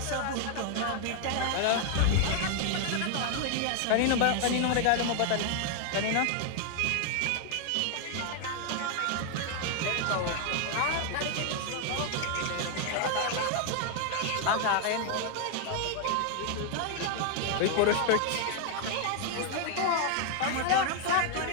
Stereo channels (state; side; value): different; both; correlation 0.00